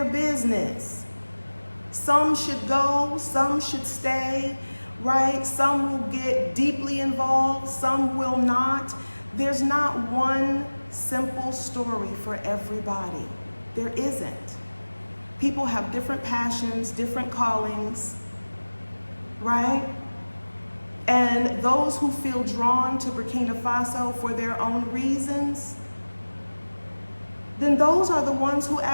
business. Some should go, some should stay, right? Some will get deeply involved, some will not. There's not one simple story for everybody. There isn't. People have different passions, different callings, right? And those who feel drawn to Burkina Faso for their own reasons, then those are the ones who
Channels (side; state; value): both; inverted; correlation -1.00